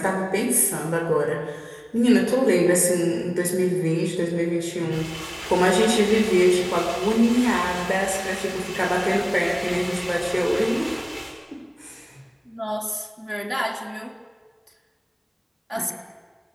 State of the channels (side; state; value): both; identical; correlation 1.00